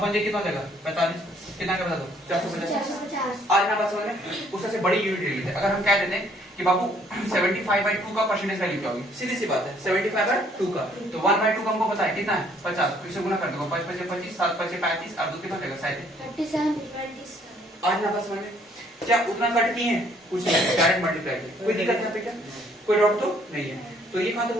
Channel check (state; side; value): normal; both; correlation 0.63